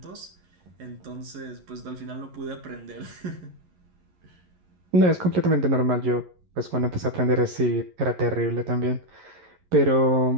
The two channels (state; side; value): late; left; 11 ms